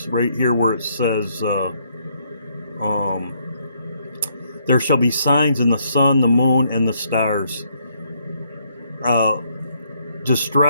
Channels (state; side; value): inverted; both; correlation -0.71